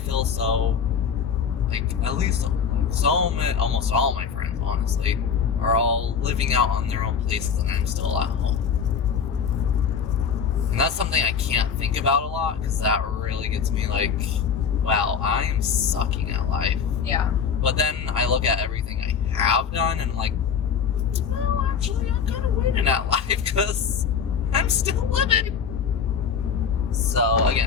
so, like, at least, like, so many, almost all my friends, honestly, are all living out on their own places and I'm still at home. And that's something I can't think about a lot, because that really gets me like, wow, I am sucking at life. Yeah. But then I look at everything I have done, and I'm like, well, actually, I'm kind of winning at life, because I'm still living. So,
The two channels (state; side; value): quieter; right; 6.7 dB